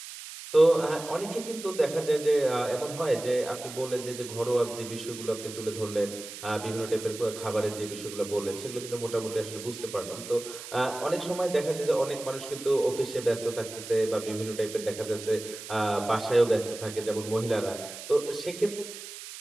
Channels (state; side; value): noise; right; hiss, 12 dB below the sound